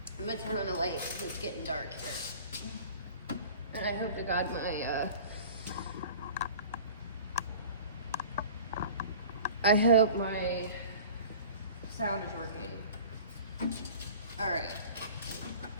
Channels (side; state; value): both; inverted; correlation -0.42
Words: I'm going to turn on the light because it's getting dark here. And I hope to God I hope my sound is working. Alright.